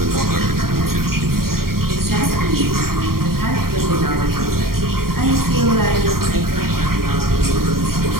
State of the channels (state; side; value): late; left; 0.93 ms